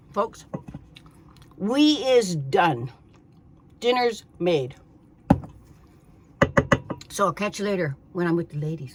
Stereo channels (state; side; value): identical; both; correlation 1.00